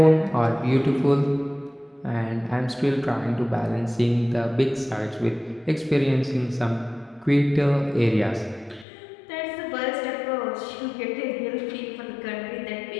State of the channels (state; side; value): drops out; right; at 8.8 s